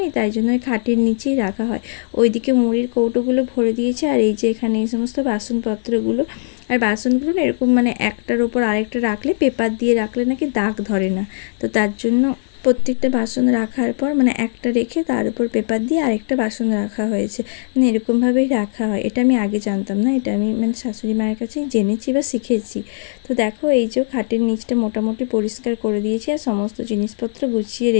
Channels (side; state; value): right; silent; digital silence